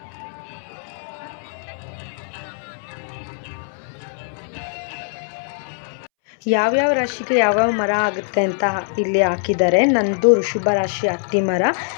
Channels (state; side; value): silent; right; 64 dB below the other